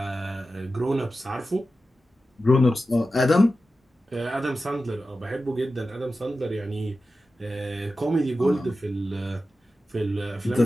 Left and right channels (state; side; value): normal; both; correlation 0.93